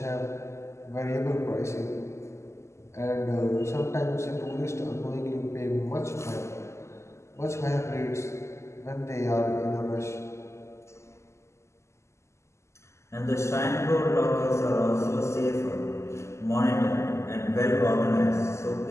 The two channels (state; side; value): late; right; 0.13 ms